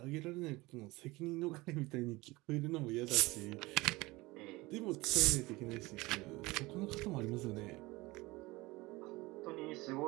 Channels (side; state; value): left; quieter; 21.5 dB